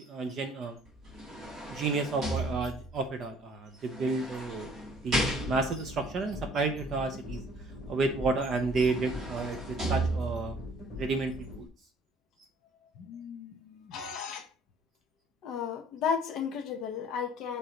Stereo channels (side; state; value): both; normal; correlation 0.57